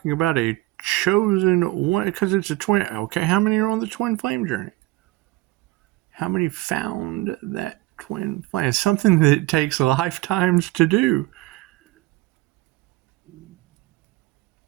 about a chosen one, because it's a twin. Okay, how many are on the twin flame journey? How many found that twin flame? It's something that takes lifetimes to do.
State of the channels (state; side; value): quieter; left; 19.3 dB